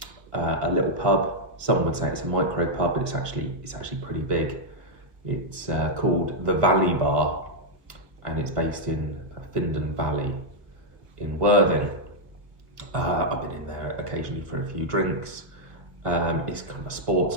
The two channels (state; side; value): late; left; 1.5 ms